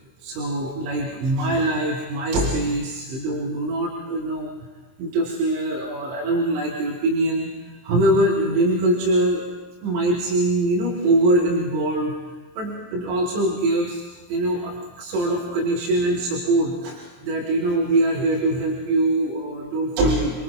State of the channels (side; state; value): left; late; 23 ms